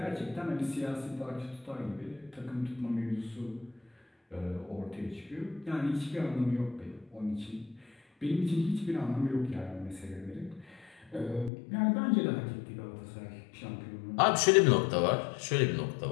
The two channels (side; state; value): right; drops out; at 11.5 s